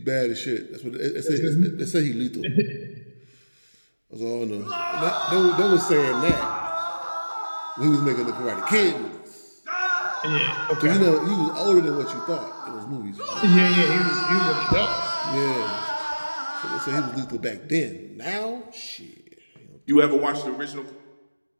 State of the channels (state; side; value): inverted; both; correlation -1.00